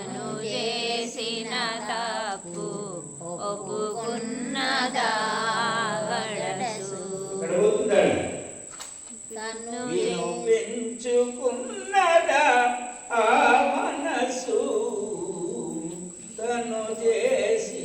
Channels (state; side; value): identical; both; correlation 1.00